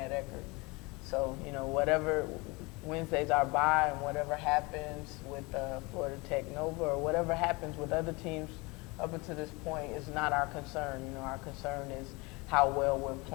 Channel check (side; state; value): right; quieter; 25.8 dB